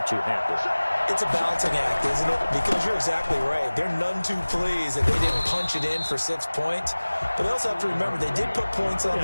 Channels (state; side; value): inverted; both; correlation -1.00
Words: too happy. It's a balancing act, isn't it? Because you're exactly right. They're none too pleased that they didn't punch it in for 6 points. But they also have to remember they did put points on